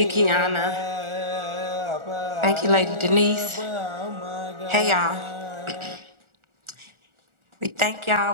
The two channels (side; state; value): left; late; 1.4 ms